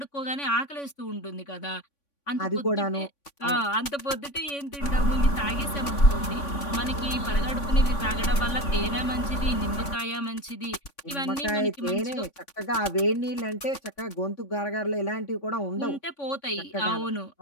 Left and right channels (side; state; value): right; late; 3.5 ms